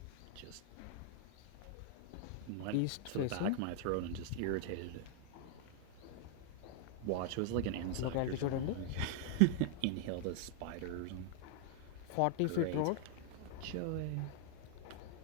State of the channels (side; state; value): both; different; correlation 0.00